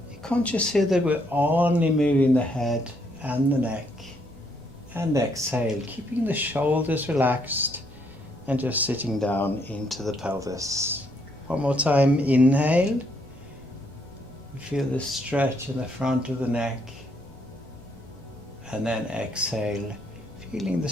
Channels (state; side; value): noise; left; hum, 26 dB below the sound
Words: conscious here that we're only moving the head and the neck. And exhale, keeping the shoulders relaxed and just sitting down into the pelvis. One more time, inhale. You feel the stretch in the front of the neck. And then exhale, feeling the